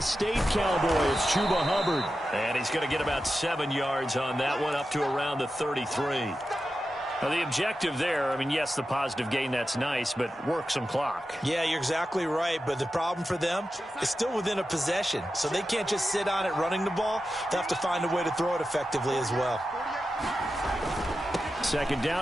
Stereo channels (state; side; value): normal; both; correlation 0.91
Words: State Cowboy is Chuba Hubbard. And he's going to get about 7 yards on that one, up to around the 33. Now, the objective there, I mean, yes, the positive gain, that's nice, but work some clock. Yeah, you're exactly right, but the problem for them is still within a possession, so they can't just sit on it running the ball. They have to find a way to throw it effectively as well. 2nd